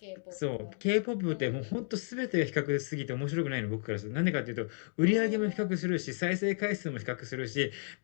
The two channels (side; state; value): right; silent; 56 dB below the other